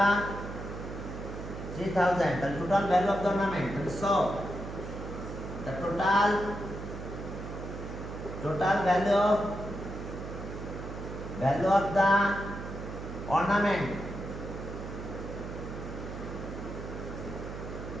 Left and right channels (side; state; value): right; noise; hum, 8 dB below the sound